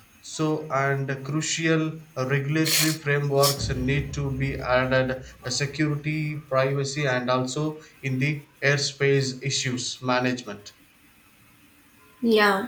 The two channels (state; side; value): identical; both; correlation 1.00